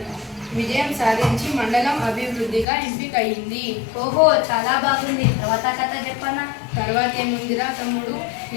విజయం సాధించి మండలం అభివృద్ధిగా ఎంపికయింది. ఓహో, చాలా బాగుంది. తర్వాత కథ చెప్పనా? తర్వాత ఏముందిరా తమ్ముడు,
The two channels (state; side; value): drops out; right; at 2.7 s